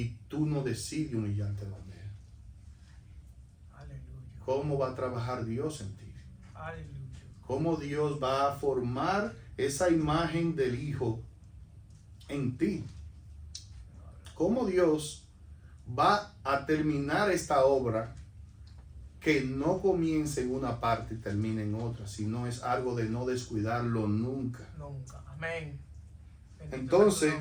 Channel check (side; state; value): both; identical; correlation 1.00